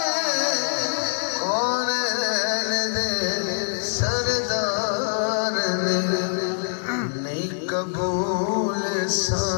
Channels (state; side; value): silent; right; 63 dB below the other